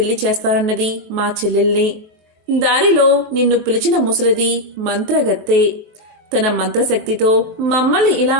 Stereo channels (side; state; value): left; late; 23 ms